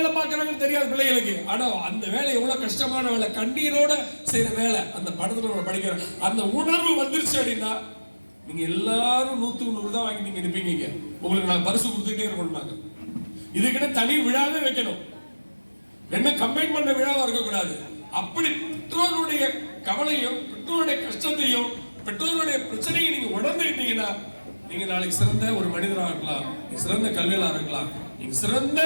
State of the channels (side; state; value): both; inverted; correlation -1.00